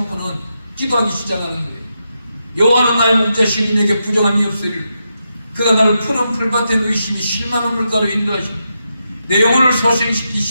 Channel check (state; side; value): inverted; both; correlation -0.85